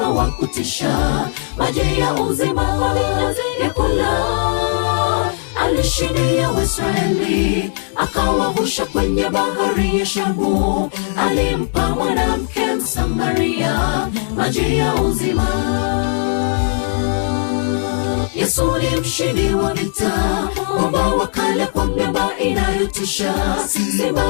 wa kutisha, maji ya uzima kwa vinyazi vya kula. Alishindia Waisraeli, akawavusha kwenye bahari ya Shamu, alimpa mwanamke Msamaria maji ya uzima. Yesu ni mshindi wa vita, mwamba wa kale kwa miamba inayotisha, simba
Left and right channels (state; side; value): silent; right; digital silence